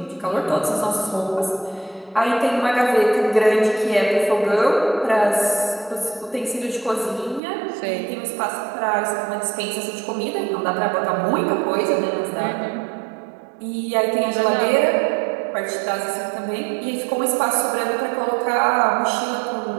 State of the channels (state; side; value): drops out; left; at 7.4 s